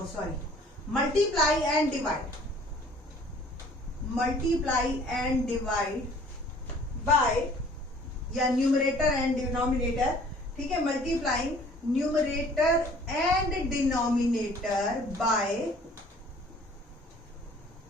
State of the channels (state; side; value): normal; both; correlation 0.53